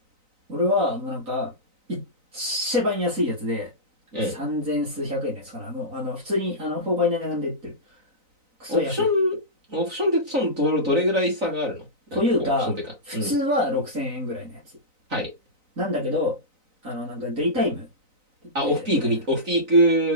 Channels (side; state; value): left; late; 3.9 ms